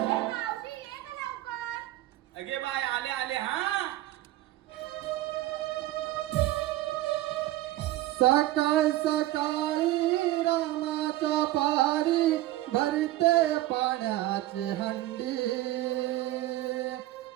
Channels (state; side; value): quieter; left; 16.1 dB